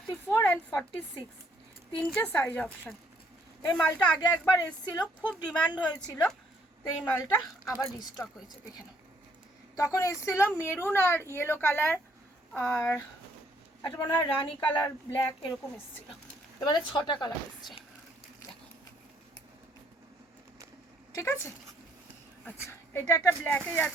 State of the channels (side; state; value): both; normal; correlation 0.67